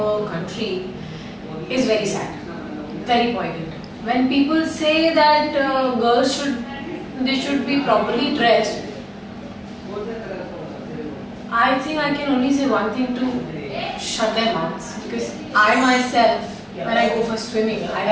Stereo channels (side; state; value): both; identical; correlation 1.00